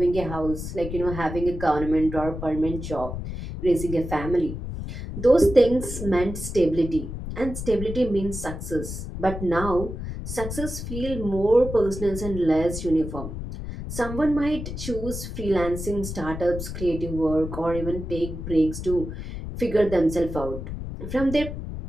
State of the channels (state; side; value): noise; left; rumble, 7 dB below the sound